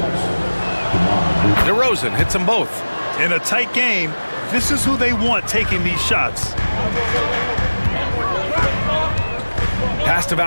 DeRozan hits them both. In a tight game, this is who they want taking these shots. Pass to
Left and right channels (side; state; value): both; inverted; correlation -1.00